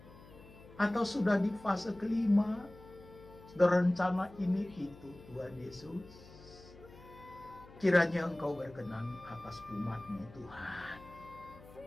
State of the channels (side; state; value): left; noise; hum, 20 dB below the sound